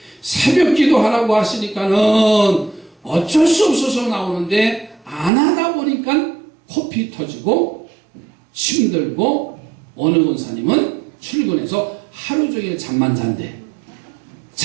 새벽 기도하라고 하시니까는 어쩔 수 없어서 나오는데 안 하다 보니까 코피 터지고 힘들고 어느 권사님은 출근해서 하루 종일 잠만 잔대.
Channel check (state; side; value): drops out; left; at 5.3 s